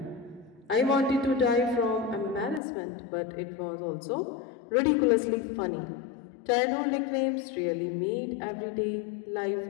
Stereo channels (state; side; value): drops out; right; at 2.6 s